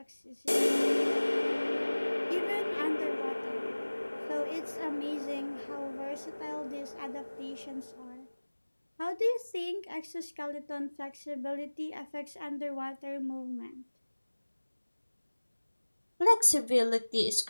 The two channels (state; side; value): inverted; both; correlation -1.00